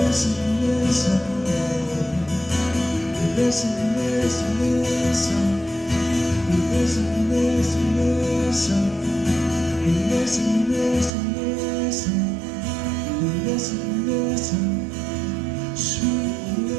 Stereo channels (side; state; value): left; drops out; at 11.1 s